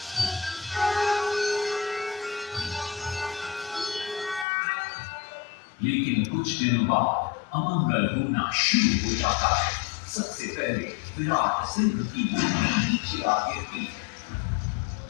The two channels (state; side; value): drops out; right; at 4.5 s